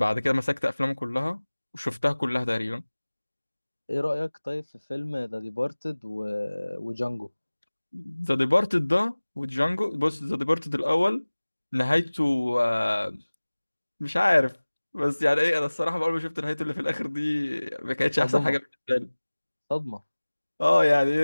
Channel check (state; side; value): inverted; both; correlation -1.00